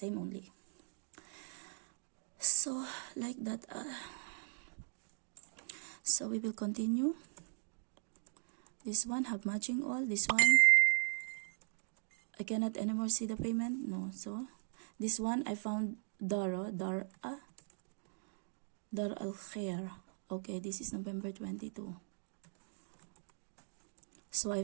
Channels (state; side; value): silent; left; digital silence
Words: only. So like that. So we will continue. This one have matching all. This one I cannot anymore see the payment. No. So this one I found Dar al-Khair. Okay, this is November 22. So I